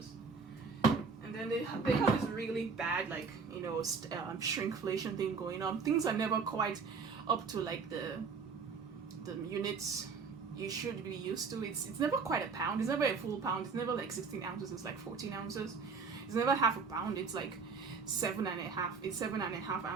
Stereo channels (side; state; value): left; quieter; 5.1 dB